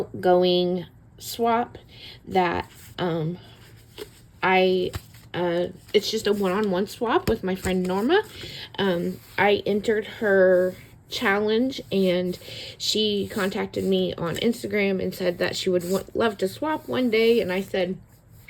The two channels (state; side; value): identical; both; correlation 1.00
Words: swap that I it's just a one-on-one swap with my friend Norma. I entered her challenge and she contacted me on Instagram and said that she would love to swap one day, and I said